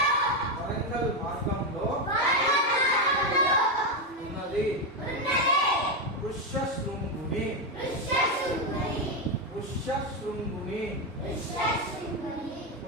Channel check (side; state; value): both; normal; correlation 0.08